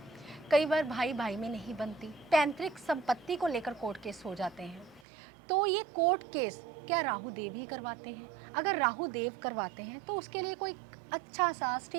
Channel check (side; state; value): left; drops out; at 5.1 s